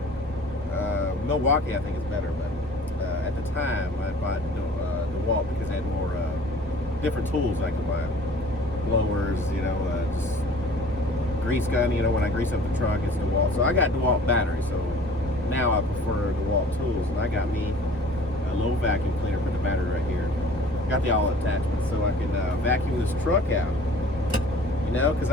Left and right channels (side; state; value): both; normal; correlation 0.48